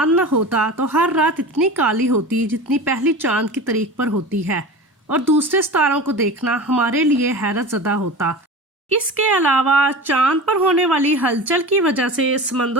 न होता तो हर रात इतनी काली होती जितनी पहली चांद की तारीख पर होती है اور دوسرے ستاروں کو دیکھنا ہمارے لیے حیرت زدہ ہوتا۔ اس کے علاوہ چاند پر ہونے والی ہلچل کی وجہ سے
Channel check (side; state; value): both; normal; correlation 0.32